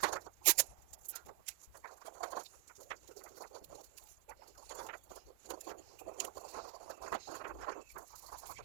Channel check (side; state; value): left; quieter; 22.1 dB